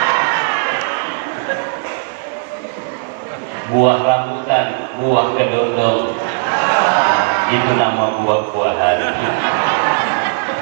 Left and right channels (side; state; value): left; silent; 60 dB below the other